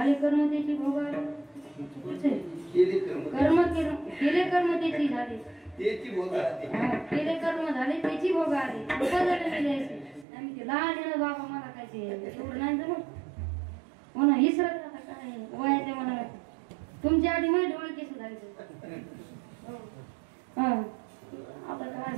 कर्म त्याची भोग केले कर्म त्याची झाले केले कर्म झाले त्याची भोग आले आम्ही ते लहान आहे ना बाबा मला काय ते एवढं नाही जमत हो ना इसरत आता काय वयाच्या मनाला तुमच्या आधी माझे डोळे केस झाले हा आता काय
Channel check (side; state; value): left; drops out; at 10.2 s